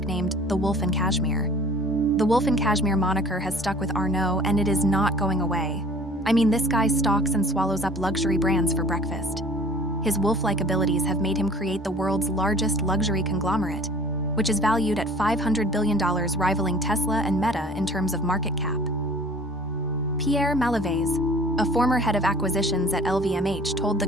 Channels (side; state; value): both; normal; correlation 0.48